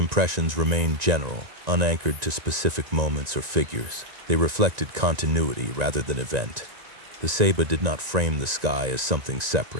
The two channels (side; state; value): left; late; 1.9 ms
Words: remained general, unanchored to specific moments or figures. They reflected continuity rather than event. The Ceiba did not frame the sky as something